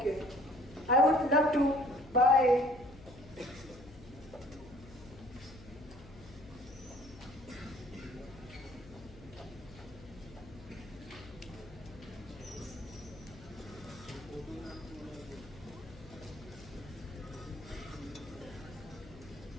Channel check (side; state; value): left; noise; hum, 18 dB below the sound